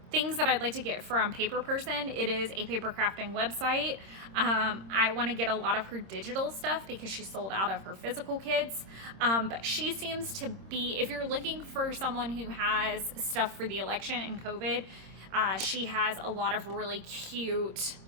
things that I'd like to get from Paper Person. It is a paper crafting website. I want to get a lot of her digital stuff because she sold out of her physical kits. But she seems to be, if you're looking for someone who has stuff for the election and COVID, she has a lot of really cute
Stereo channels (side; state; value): left; late; 26 ms